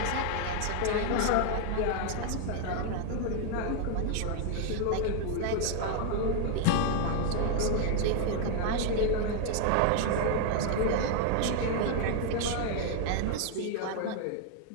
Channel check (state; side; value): different; both; correlation 0.00